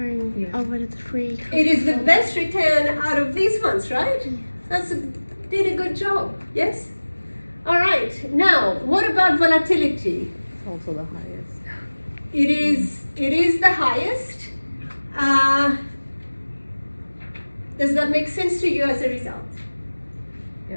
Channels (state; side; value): inverted; both; correlation -1.00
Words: Yeah. over the 3. It is the best return out of these ones, right? Did a good job, yes? All right, now, what about volatility? It's also the highest. It is the highest. Does that make sense to you as a result?